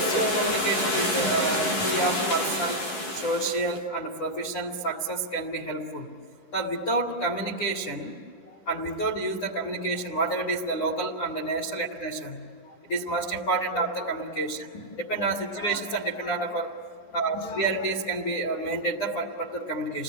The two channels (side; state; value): right; late; 11 ms